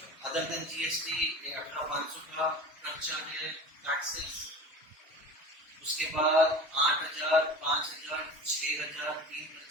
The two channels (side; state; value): both; normal; correlation 0.35